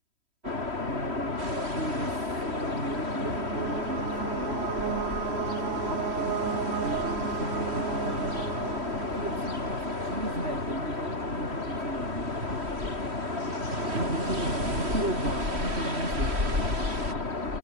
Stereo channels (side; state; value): left; late; 3.1 ms